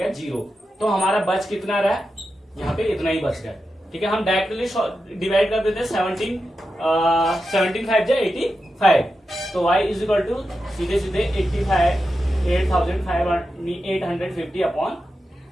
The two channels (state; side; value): normal; both; correlation 0.90